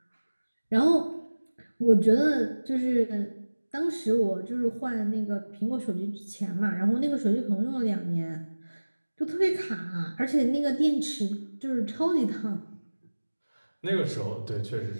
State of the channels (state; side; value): inverted; both; correlation -1.00